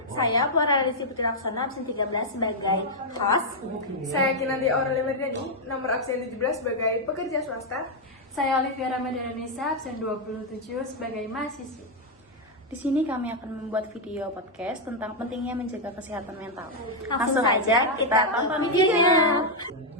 Saya Flora Radisi Putri Laksana, absen 13 sebagai host. Saya Kinanti Aurelia Merdani, nomor absen 17 sebagai pekerja swasta. Saya Olivia Ramadhanisa, absen 27 sebagai mahasiswi. Di sini kami akan membuat video podcast tentang pentingnya menjaga kesehatan mental. Langsung saja kita tonton videonya.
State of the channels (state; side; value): normal; both; correlation -0.01